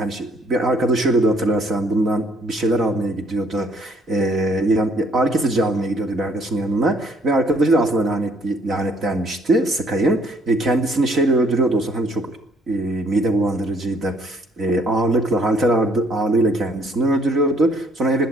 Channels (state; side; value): normal; both; correlation 0.64